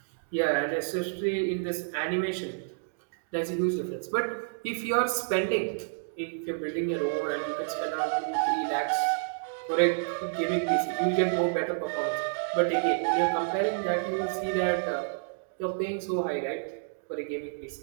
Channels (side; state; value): left; silent; digital silence